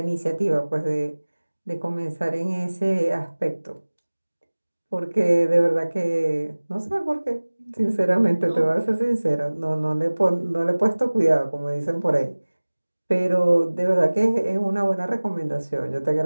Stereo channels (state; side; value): inverted; both; correlation -1.00